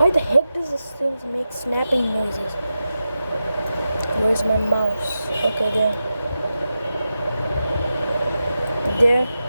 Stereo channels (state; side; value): inverted; both; correlation -0.90